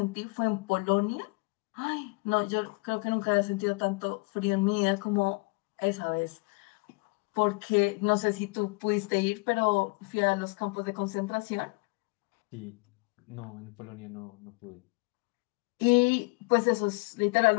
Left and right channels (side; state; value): right; quieter; 27.8 dB